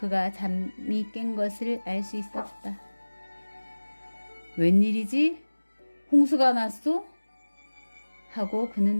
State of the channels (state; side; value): inverted; both; correlation -1.00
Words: 잠이 깬 것을 알 수 있었다. 웬일이지? 홍수가 났소? 하고